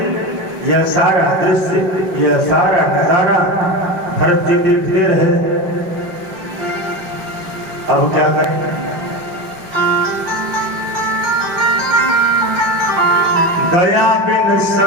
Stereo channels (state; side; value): late; left; 5.7 ms